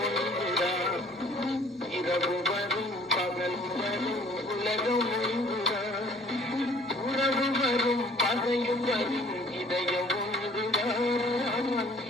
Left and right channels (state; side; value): normal; both; correlation 0.55